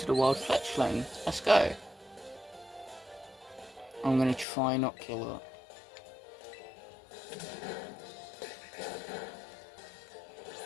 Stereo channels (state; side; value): drops out; right; at 4.5 s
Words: a wild Fletchling. Let's go. I'm going to try not kill her.